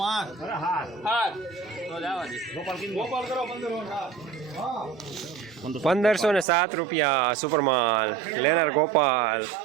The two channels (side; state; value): left; drops out; at 6.5 s